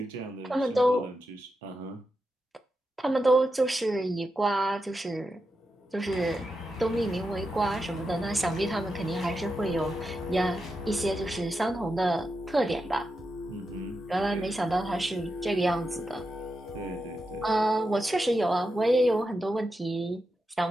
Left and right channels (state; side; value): normal; both; correlation 0.88